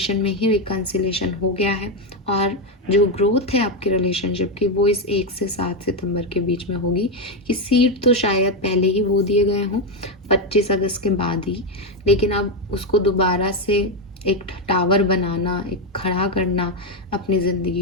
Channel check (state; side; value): normal; both; correlation 0.07